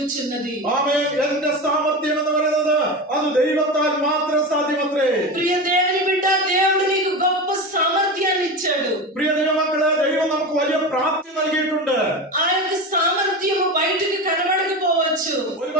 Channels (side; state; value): both; normal; correlation 0.24